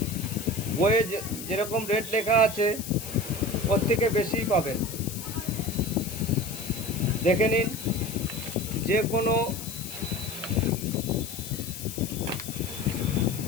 বইয়ে যেরকম রেট লেখা আছে ওর থেকে বেশিই পাবেন। দেখে নিন, যে কোনো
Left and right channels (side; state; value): left; noise; hiss, 10 dB below the sound